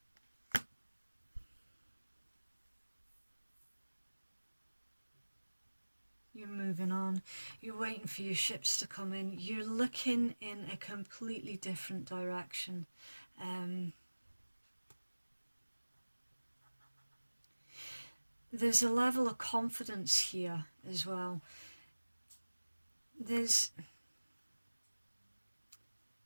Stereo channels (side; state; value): both; inverted; correlation -1.00